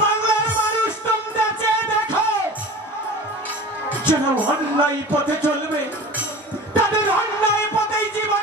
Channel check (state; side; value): normal; both; correlation 0.37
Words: বাংলার মানুষ, তোমরা চেয়ে দেখো, যারা অন্যায় পথে চলবে তাদের অন্যায় পথেই